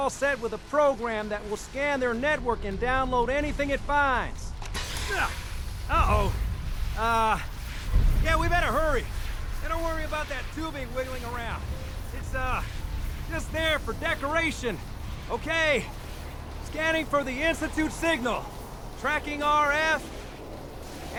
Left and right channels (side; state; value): both; identical; correlation 1.00